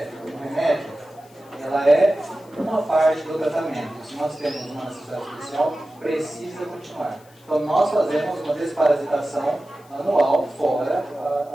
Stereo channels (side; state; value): left; noise; hiss, 28 dB below the sound